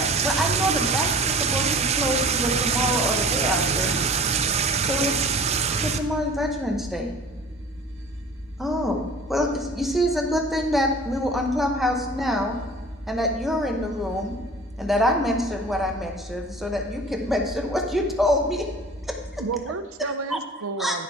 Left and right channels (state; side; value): normal; both; correlation 0.44